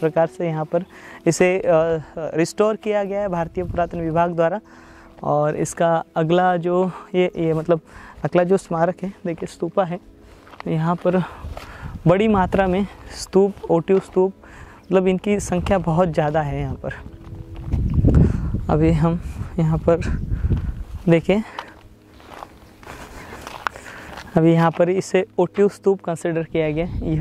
से यहाँ पर इसे रिस्टोर किया गया है भारतीय पुरातन विभाग द्वारा। और इसका अगला जो ये मतलब अगला जो स्मारक है देखिए स्तूपा है, यहाँ पर बड़ी मात्रा में स्तूप, ओटिव स्तूप, मतलब इनकी संख्या बहुत ज़्यादा है यहाँ पर। अभी हम यहाँ पर देखें, अभी यहाँ पर इसे ओटिव स्तूप कंसिडर किया गया।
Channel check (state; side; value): identical; both; correlation 1.00